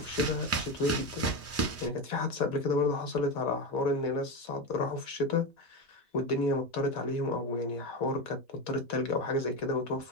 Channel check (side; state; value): both; normal; correlation 0.17